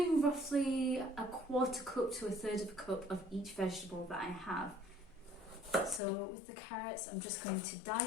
roughly a quarter cup to a third of a cup of each vegetable that I have. So with the carrots, I'm just going to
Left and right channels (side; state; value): right; drops out; at 6.0 s